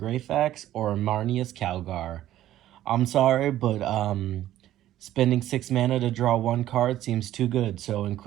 or Marneus Calgar. I'm sorry, but spending 6 mana to draw 1 card seems too good, so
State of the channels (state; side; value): quieter; left; 13.2 dB